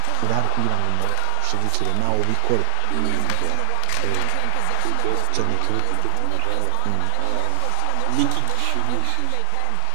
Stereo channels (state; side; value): different; both; correlation 0.00